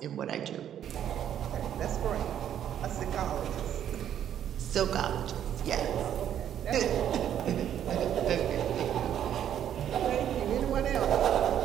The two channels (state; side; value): quieter; left; 10.1 dB